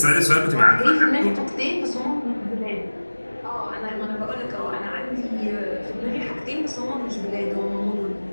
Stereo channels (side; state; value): both; inverted; correlation -1.00